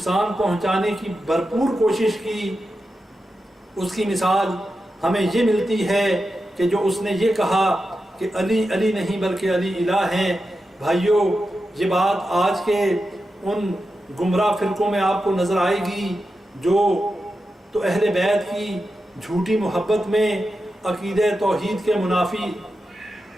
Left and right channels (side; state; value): both; normal; correlation 0.90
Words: پہنچانے کی بھرپور کوشش کی۔ اس کی مثال ہمیں یہ ملتی ہے کہ جو اس نے یہ کہا کہ علی علی نہیں بلکہ علی الہ ہیں۔ بھائیوں، یہ بات آج کے ان گمراہ فرقوں میں آپ کو نظر آئے گی جو تو اہل بیت کی جھوٹی محبت میں عقیدہ توحید کے منافی